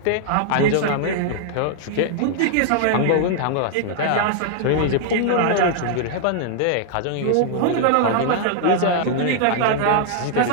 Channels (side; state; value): both; different; correlation -0.01